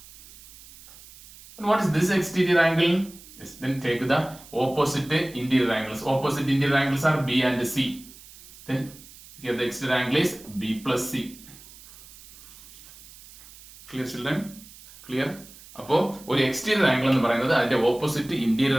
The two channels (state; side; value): noise; right; hiss, 20 dB below the sound